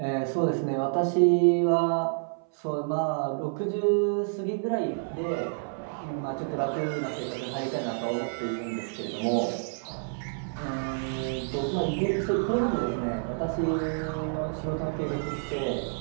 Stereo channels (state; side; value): silent; left; 59 dB below the other